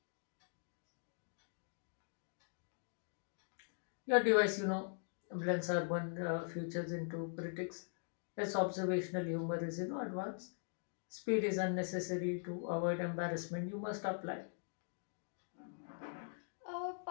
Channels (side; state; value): right; silent; digital silence